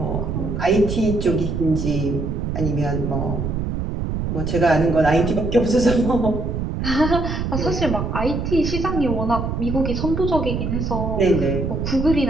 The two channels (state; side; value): noise; right; rumble, 2 dB below the sound